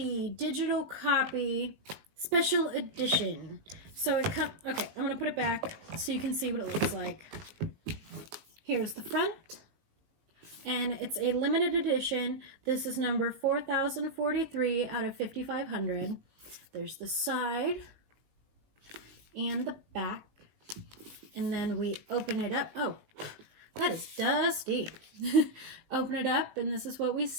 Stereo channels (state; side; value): late; left; 19 ms